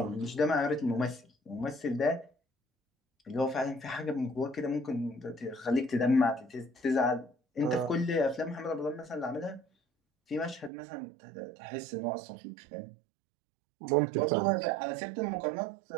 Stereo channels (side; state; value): left; drops out; at 10.7 s